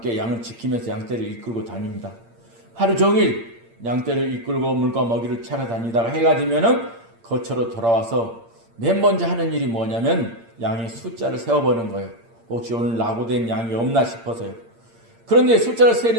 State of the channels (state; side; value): late; left; 8.7 ms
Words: 양을 지키면서 양떼를 이끌고 다닙니다. 하루 종일 양떼를 이끌고 물과 먹이를 찾아다니다가 해가 지면은 거처로 돌아와서 맨 먼저 하는 일이 뭐냐면 양의 숫자를 세어보는 거예요. 혹시 오늘 낙오된 양이 없나 싶어서요. 그런데 숫자를